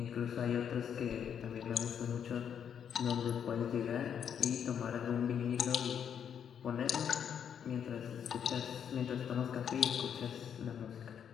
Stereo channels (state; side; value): quieter; right; 8.2 dB